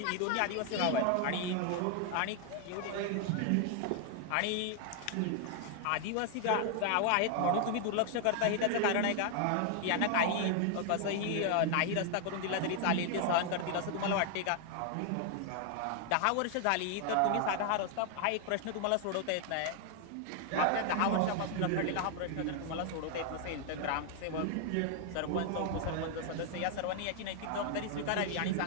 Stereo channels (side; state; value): both; different; correlation 0.00